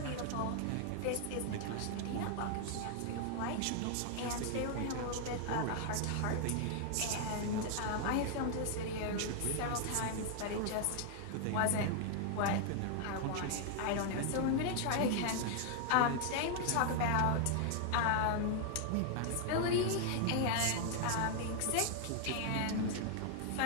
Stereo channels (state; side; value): different; both; correlation 0.00